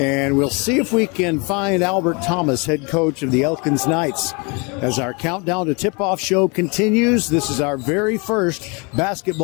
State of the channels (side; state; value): right; quieter; 30.9 dB